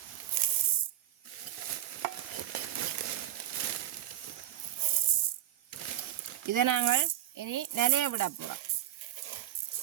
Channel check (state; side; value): quieter; left; 12.8 dB